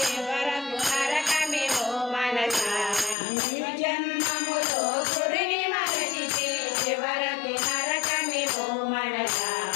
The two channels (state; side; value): drops out; right; at 3.2 s